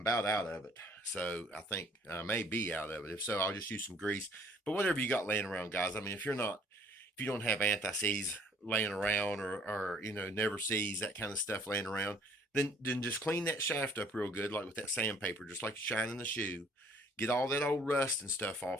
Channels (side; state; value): both; normal; correlation 0.59